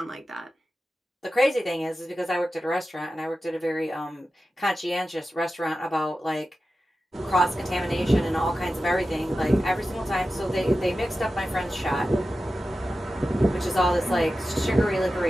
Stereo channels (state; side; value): normal; both; correlation 0.93